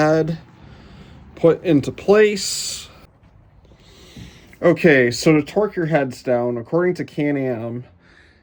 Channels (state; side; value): identical; both; correlation 1.00